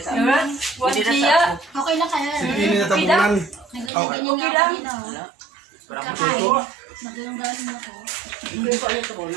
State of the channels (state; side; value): drops out; left; at 3.9 s